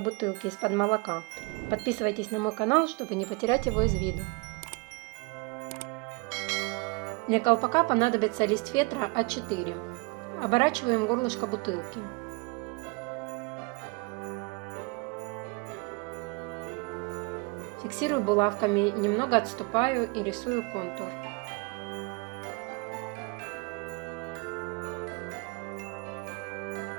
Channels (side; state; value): left; quieter; 28.6 dB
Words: из-под молока. Подписывайтесь на мой канал, чтобы не потерять его из виду. Для колпака понадобится лист фетра А4. Оборачиваем горлышко бутылки. Фиксирую булавками, немного отступаю и рисую контур.